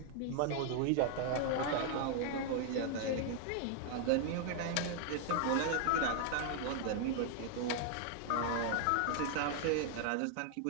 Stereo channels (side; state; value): both; different; correlation 0.00